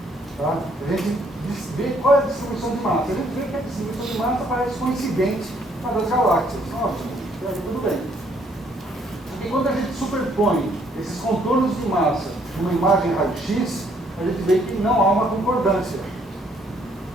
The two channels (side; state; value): both; normal; correlation 0.66